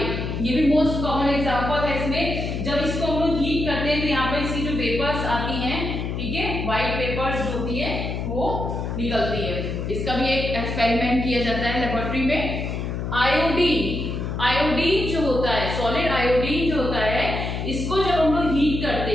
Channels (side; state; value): left; noise; hum, 3 dB below the sound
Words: ये भी मोस्ट कॉमन एग्जांपल है। इसमें जब इसको हम लोग हीट करते हैं तो यहाँ पर इसकी जो वेपर्स आती हैं, ठीक है, व्हाइट वेपर्स जो होती है वो निकलती है। इसका भी एक एक्सपेरिमेंट किया जाता है लेबोरेटरी में। आयोडीन जो होता है, सॉलिड आयोडीन जो होता है, इसको जब हम लोग हीट करते